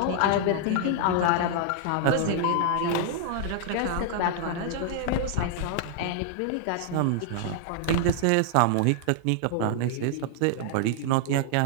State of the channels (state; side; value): different; both; correlation -0.01